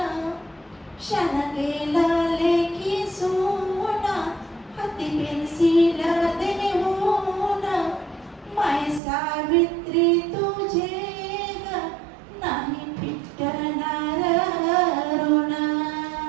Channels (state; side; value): drops out; left; at 9.0 s